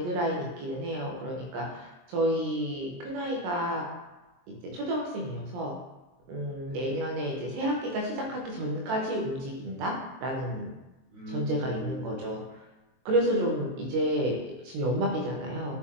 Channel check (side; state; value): left; late; 23 ms